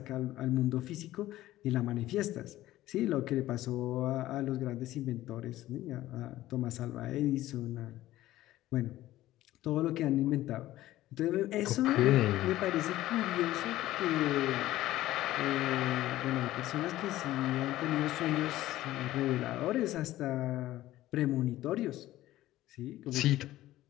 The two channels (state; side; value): quieter; right; 15.3 dB